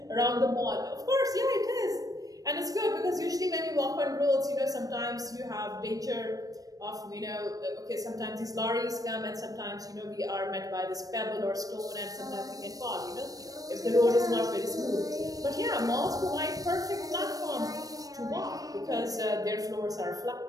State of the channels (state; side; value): late; left; 0.18 ms